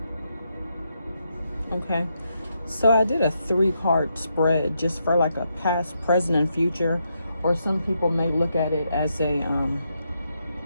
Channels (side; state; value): both; inverted; correlation -0.81